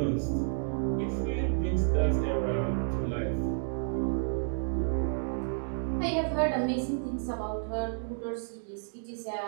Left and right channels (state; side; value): silent; left; digital silence